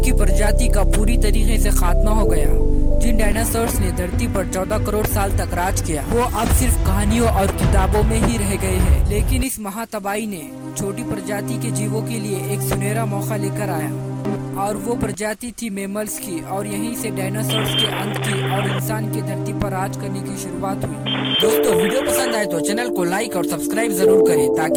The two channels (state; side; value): identical; both; correlation 1.00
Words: प्रजाति का पूरी तरीके से खात्मा हो गया। जिन डायनासोर्स ने धरती पर 14 करोड़ साल तक राज किया वो अब सिर्फ कहानियों और किताबों में ही रह गए हैं। लेकिन इस महातबाही ने छोटी प्रजाति के जीवों के लिए एक सुनहरा मौका लेकर आया और वो प्रजाति थी मैमल्स की और यहीं से डायनासोर्स के अंत की और इंसान की धरती पर राज करने की शुरुआत हुई। दोस्तों वीडियो पसंद आए तो चैनल को लाइक और सब्सक्राइब जरूर करें